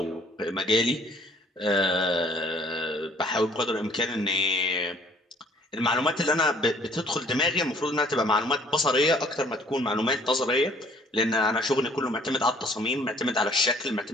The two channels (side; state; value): both; normal; correlation 0.58